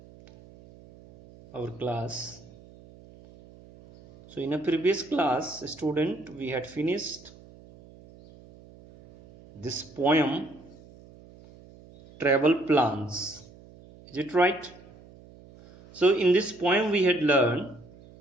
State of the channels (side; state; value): right; noise; hum, 22 dB below the sound